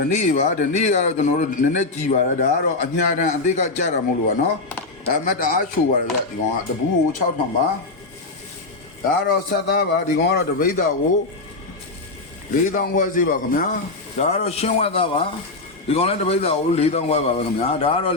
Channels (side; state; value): right; quieter; 3.4 dB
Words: ီနေ့ကတော့ကျွန်တော်တို့နည်းနည်းကြည်ပါတယ်ဒါကတော့အညာတန်အသေးကကြတာမဟုတ်လို့ပါနော်ဒါမှတအားချိုပါတယ်ဗျဒီကောင်ကတပူးကို6000ပါဒါကတော့ဆက်သားပါဒီကောင်ကတော့တပိတ်သားကို4000ခွဲစီပါခင်ဗျာဒါကတော့ရှင်းဝတ်သားပါဒီကောင်လည်းတပိတ်သားကို4000ခွဲပါပဲခင်ဗျာဒါကတော